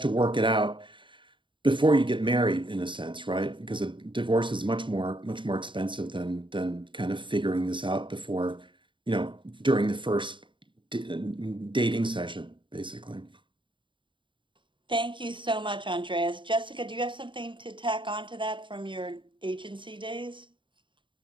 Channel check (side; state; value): left; late; 0.24 ms